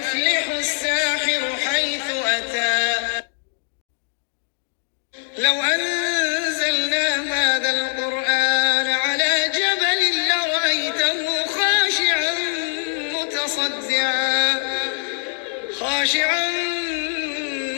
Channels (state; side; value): silent; right; 64 dB below the other